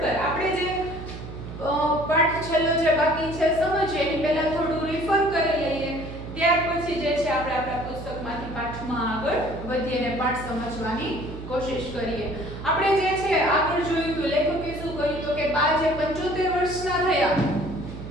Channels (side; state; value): right; noise; hum, 11 dB below the sound